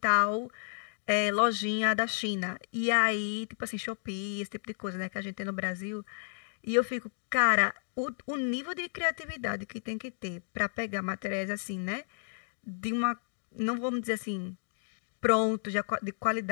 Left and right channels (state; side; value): silent; right; digital silence